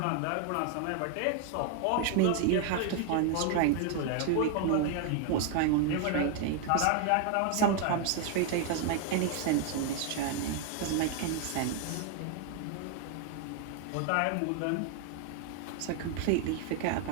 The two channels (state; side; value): different; both; correlation 0.00